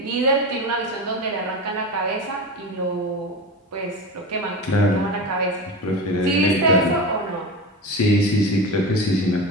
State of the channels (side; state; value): both; normal; correlation 0.25